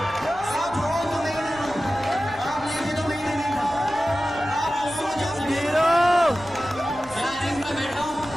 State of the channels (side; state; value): left; noise; hum, 23 dB below the sound